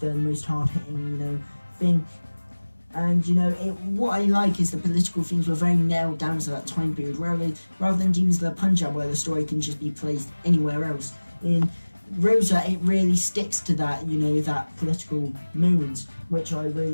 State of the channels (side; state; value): both; inverted; correlation -1.00